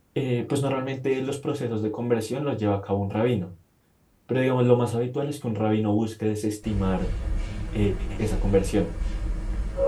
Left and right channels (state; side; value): identical; both; correlation 1.00